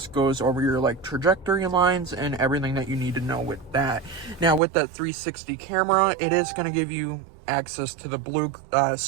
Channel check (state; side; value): drops out; left; at 4.6 s